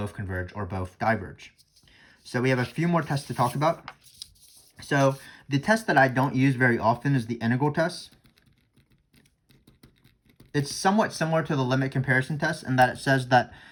converge or both diverge. So we have a few more tests to talk about. So the test that I don't use very often is the integral test. It's somewhat similar to the limit comparison test in that it says that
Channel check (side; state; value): both; identical; correlation 1.00